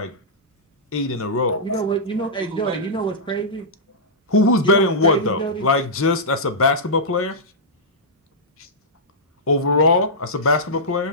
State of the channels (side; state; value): both; normal; correlation -0.12